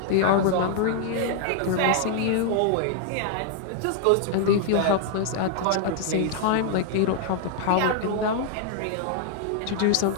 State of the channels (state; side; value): different; both; correlation -0.01